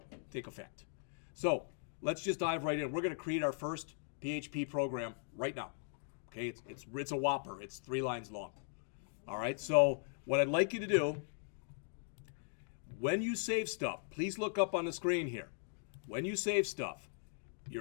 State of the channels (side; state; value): right; silent; digital silence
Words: So let's just dive right in. We're going to create our first PHP program right now. Okay, it's a whopper. It's 3 lines long. All right. So what I'd like you to do, when you save stuff, please look up on the screen here. When you save stuff,